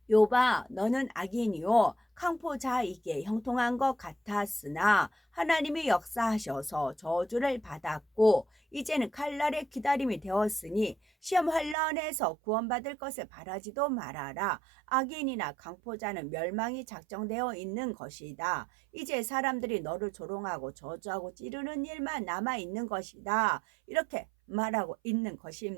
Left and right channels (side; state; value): left; drops out; at 11.8 s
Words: 욥아 너는 악인이요 강포자이게 형통한 것 같았으나 하나님이 역사하셔서 저주를 받았고 이제는 칼날의 기다림이 되었으니 시험 환란에서 구원받을 것을 바라지도 말아라. 악인이나 강포자는 멸망이 작정되어 있는 것이다. 이제 사람들이 너를 조롱하고 저주하고 찌르는 일만 남아있는 것이다. 이렇게 말하고 있는